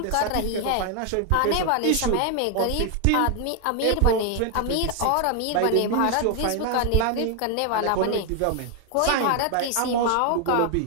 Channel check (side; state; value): both; different; correlation 0.01